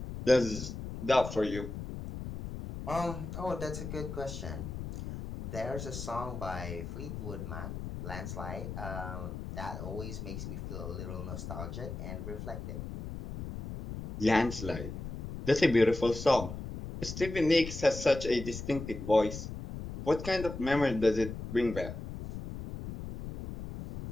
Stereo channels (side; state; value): left; noise; rumble, 8 dB below the sound